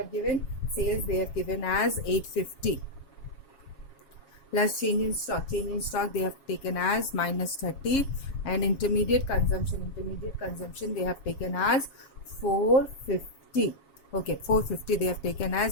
given. Sales they have given as 850 plus change in stock. Change in stock they have taken as minus 30, and intermediate consumption they have taken as 450. Okay, 450 they have taken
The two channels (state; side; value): late; right; 7.3 ms